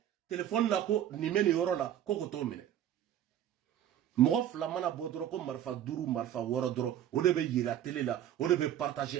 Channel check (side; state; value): left; quieter; 11.0 dB